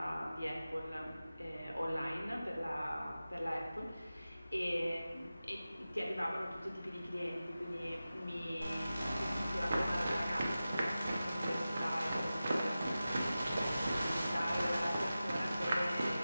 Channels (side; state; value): both; inverted; correlation -0.95